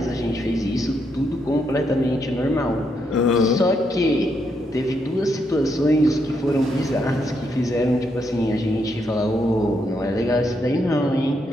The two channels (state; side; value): normal; both; correlation 0.79